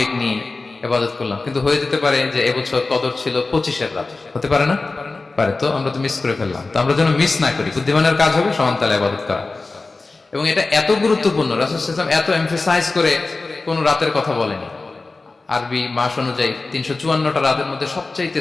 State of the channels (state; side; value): quieter; right; 3.6 dB